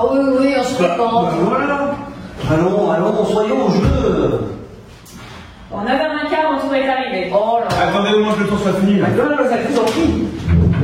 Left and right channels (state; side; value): identical; both; correlation 1.00